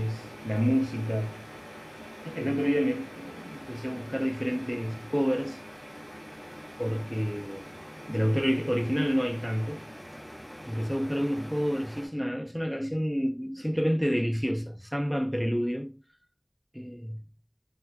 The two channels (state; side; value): identical; both; correlation 1.00